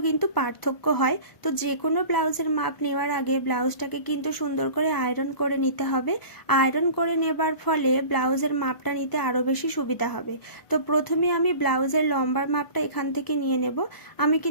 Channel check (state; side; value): late; right; 1.0 ms